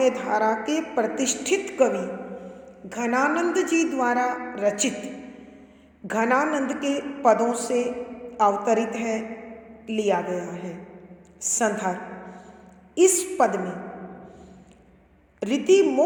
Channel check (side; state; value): both; identical; correlation 1.00